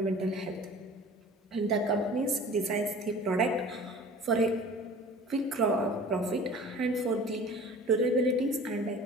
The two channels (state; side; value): normal; both; correlation 0.43